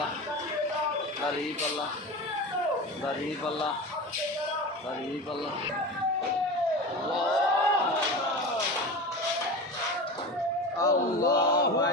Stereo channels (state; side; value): normal; both; correlation 0.29